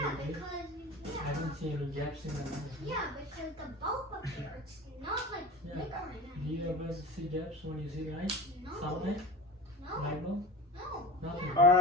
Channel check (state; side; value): normal; both; correlation 0.32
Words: right? because I don't see any gaps in the line. yeah, because the bulb up here, it's not like Yeah. flickering. Do you ever see gaps when you see light? No, Sunlight? no, Light bulb? no. Nothing.